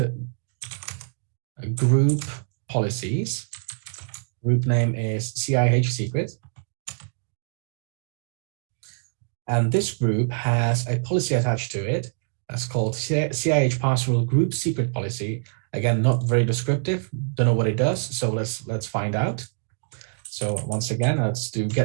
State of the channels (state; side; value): silent; left; digital silence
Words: group policies. Group name is CIH secret. And this group has a policy attached to it that's called CIH password group secret policy. Again, not very descriptive. Don't know what it does. So let's find out. So once again, let's do